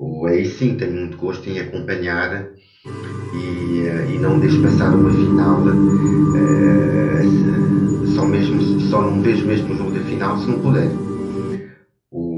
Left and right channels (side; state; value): both; identical; correlation 1.00